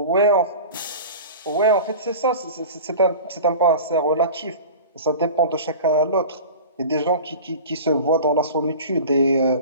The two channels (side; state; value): both; inverted; correlation -0.35